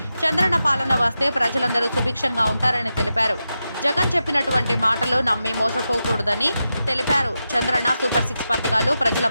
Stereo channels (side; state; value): both; inverted; correlation -0.90